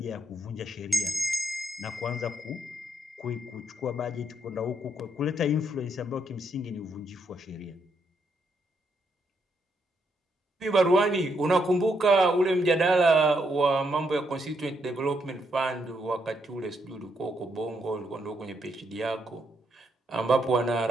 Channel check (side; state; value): both; normal; correlation 0.77